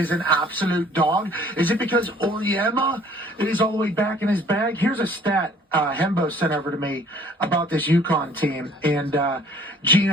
an absolute dog? Is it because Oriema is all the way back in his bag? Here's a stat Hembo sent over to me about this UConn team and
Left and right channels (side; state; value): both; normal; correlation 0.55